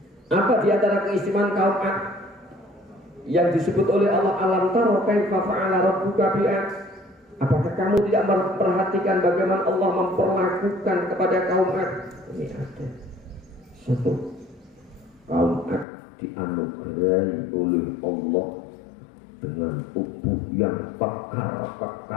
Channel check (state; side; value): drops out; right; at 15.9 s